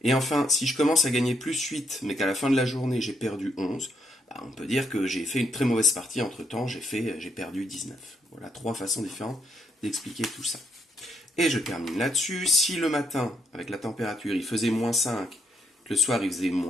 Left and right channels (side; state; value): both; normal; correlation 0.76